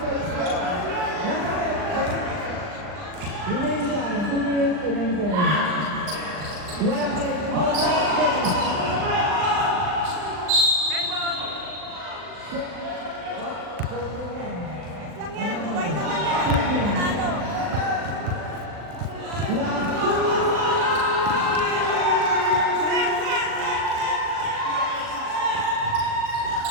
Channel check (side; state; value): left; late; 39 ms